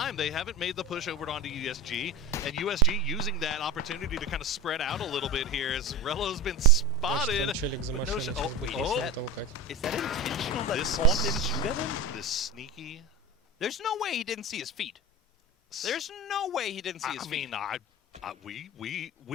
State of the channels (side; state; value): both; normal; correlation 0.25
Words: They haven't made the push over onto USG, and USG using that opportunity to kind of spread out a little bit here as Rello's been spotted. Там челик за машиной, сейчас будет машину толкать. Is that intentional that Corn didn't shoot at him? This sneaky. There's no way he didn't see his feet. There's no way he didn't see his feet. I mean,